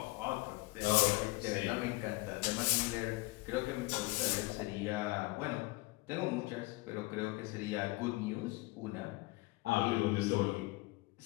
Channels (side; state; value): right; quieter; 22.6 dB